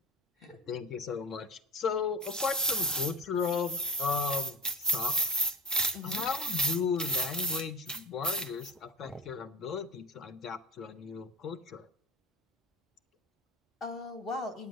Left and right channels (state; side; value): normal; both; correlation 0.30